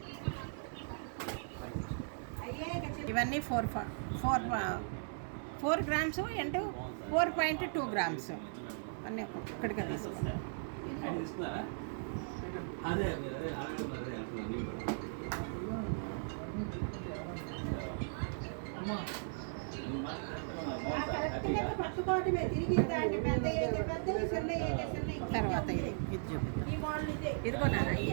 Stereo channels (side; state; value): left; silent; 53 dB below the other